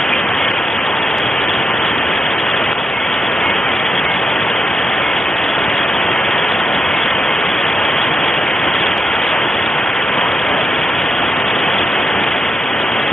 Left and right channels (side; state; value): both; normal; correlation 0.85